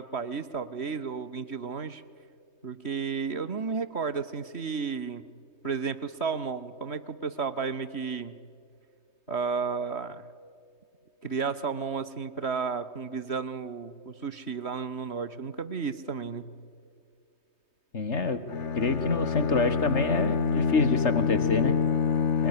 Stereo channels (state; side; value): late; right; 3.1 ms